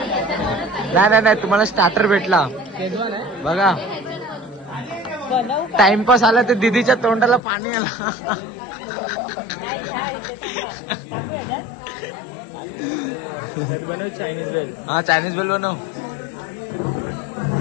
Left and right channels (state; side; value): drops out; right; at 7.4 s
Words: नाही नाही तुम्हाला स्टार्टर भेटला बघा. टाइमपास आला तर दीदीच्या तोंडाला पाणी आला. हा चायनीज बेल बनव.